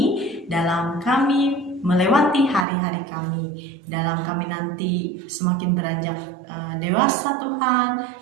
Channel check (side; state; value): left; drops out; at 2.7 s